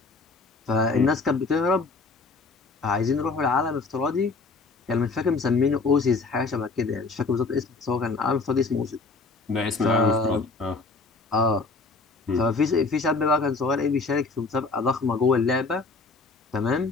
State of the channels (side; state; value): right; quieter; 3.9 dB